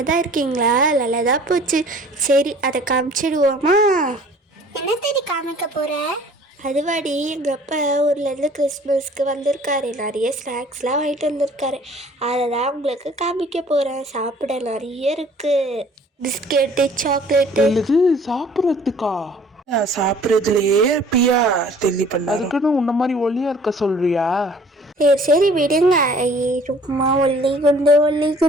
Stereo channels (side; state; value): both; normal; correlation 0.52